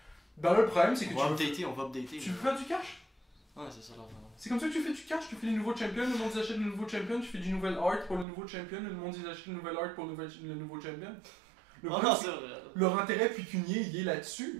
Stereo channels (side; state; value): left; drops out; at 8.2 s